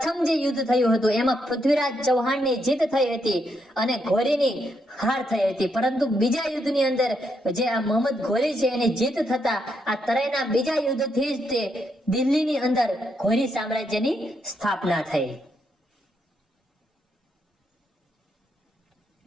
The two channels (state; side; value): normal; both; correlation 0.79